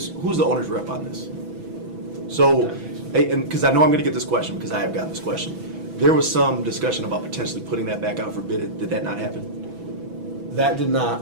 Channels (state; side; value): late; left; 6.1 ms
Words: the owner's rep on this? So, and because I know I'm going to get this question because I have gotten this question. There was some discussion about potentially putting that back out for bid. Did that not happen? that did